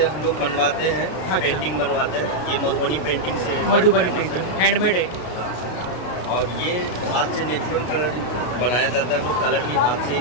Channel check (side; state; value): right; late; 33 ms